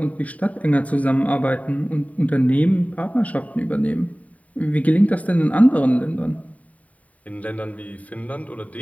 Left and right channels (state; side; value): late; right; 0.069 ms